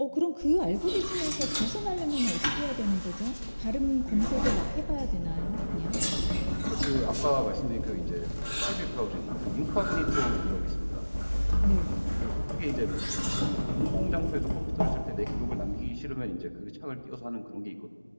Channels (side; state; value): both; inverted; correlation -1.00